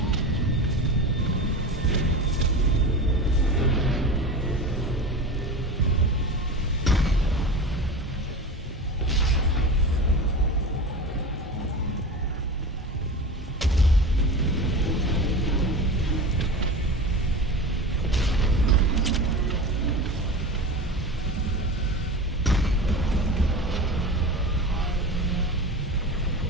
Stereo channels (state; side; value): normal; both; correlation 0.29